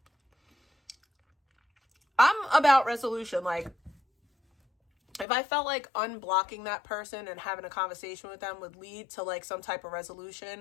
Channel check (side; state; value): right; drops out; at 5.2 s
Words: I'm about resolution. Like, if I felt like unblocking that person and having a conversation with them would lead to like some type of